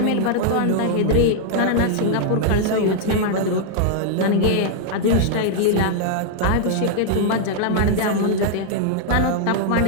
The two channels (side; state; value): both; different; correlation -0.01